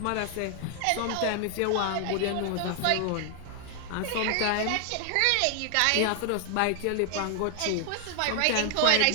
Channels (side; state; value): both; different; correlation 0.00